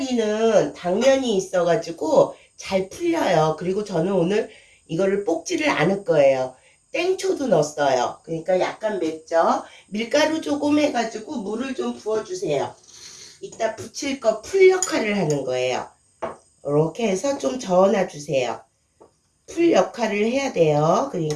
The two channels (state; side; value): identical; both; correlation 1.00